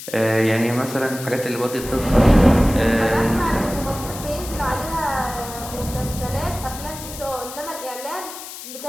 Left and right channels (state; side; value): noise; left; hiss, 12 dB below the sound